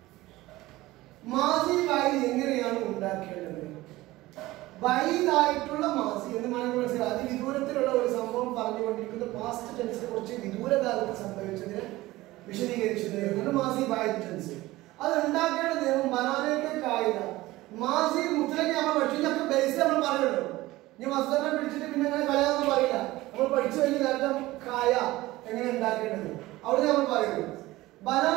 മാസി ബഈദ് എങ്ങനെയാണ് ഉണ്ടാക്കേണ്ടത്? ബഈദായിട്ടുള്ള മാസി എന്ന് മനസ്സിലായി അതിവിദൂരത്തിലുള്ള ഒരു സംഭവം പറഞ്ഞുകൊണ്ടിരിക്കുന്ന പാസ്റ്റ് ടെൻസിനെ കുറിച്ച് വിദൂരകാലത്ത് സംഭവിച്ചതിനെ വിശദീകരിച്ചത് മാസി ബഈദ് ടെൻസ്. അത് ഉണ്ടാക്കേണ്ട നിയമം ബനാനയ്ക്ക് കായിക മാസി മുത്തലയ്ക്ക് നമ്മൾ പഠിച്ചൊക്കെ ബേസ് നമ്മൾ പറയുള്ളൂ. ഇനി മസ്തനെ പിടിച്ചിട്ട് പിന്നെ അങ്ങനെ കളയാന്ന് പറയില്ല. നമ്മൾ പഠിച്ചു കഴിഞ്ഞ നേരത്തെ കായ എങ്ങനെ ഉണ്ടാക്കേണ്ടത് അവിടെ നമ്മൾ പറയുന്നു.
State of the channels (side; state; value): left; quieter; 18.2 dB